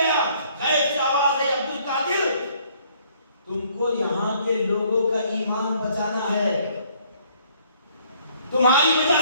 غیب سے آواز ہے, عبد القادر تم کو یہاں کے لوگوں کا ایمان بچانا ہے, تمہاری وجہ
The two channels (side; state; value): both; inverted; correlation -0.63